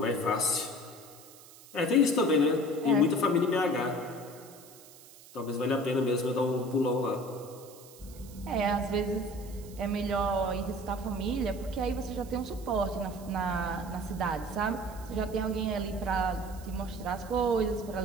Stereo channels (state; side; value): noise; right; hiss, 21 dB below the sound